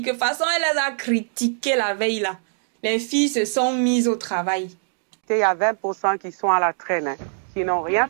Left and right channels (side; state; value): left; silent; digital silence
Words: que de toute façon elle les a critiqué la veille là. Les filles se sont mises au travail. Il y a 20% qui sont à la traîne, qui n'ont rien